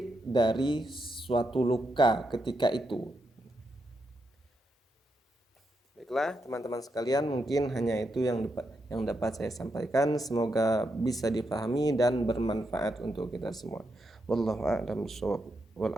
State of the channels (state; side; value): normal; both; correlation 0.83